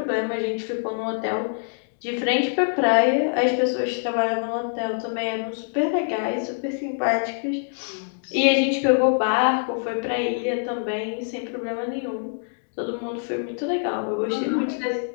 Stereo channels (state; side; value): silent; right; digital silence